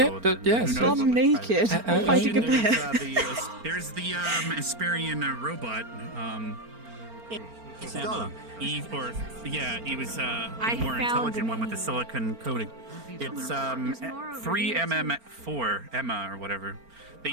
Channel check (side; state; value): left; late; 4.4 ms